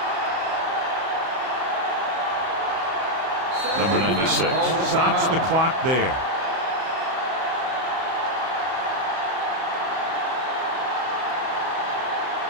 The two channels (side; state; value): left; late; 31 ms